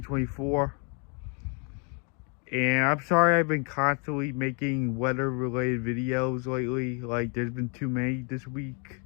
And I'm sorry I've been constantly making weather-related videos lately. Like, there's been too many this week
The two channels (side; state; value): right; quieter; 37.0 dB